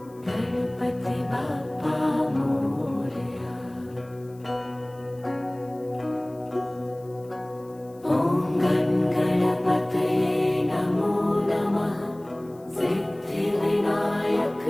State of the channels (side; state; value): left; noise; hiss, 29 dB below the sound